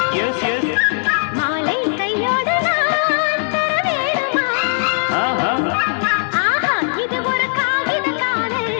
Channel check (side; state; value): right; silent; digital silence